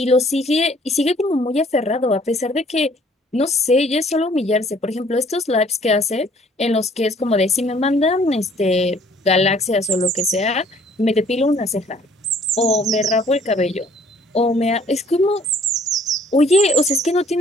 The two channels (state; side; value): normal; both; correlation 0.59